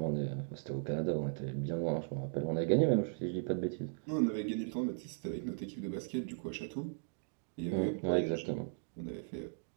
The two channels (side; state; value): left; silent; digital silence